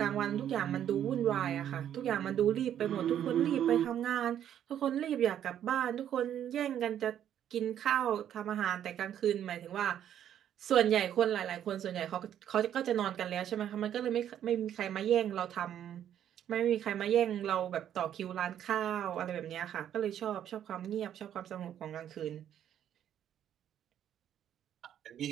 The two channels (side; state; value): left; quieter; 10.2 dB